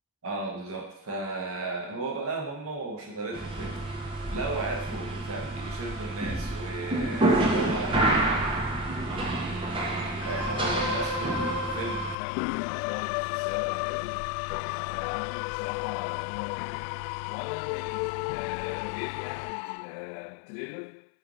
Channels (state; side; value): drops out; right; at 12.2 s